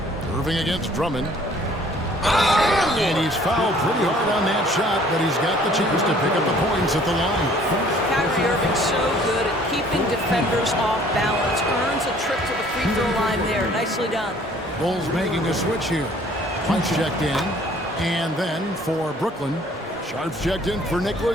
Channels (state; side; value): normal; both; correlation 0.56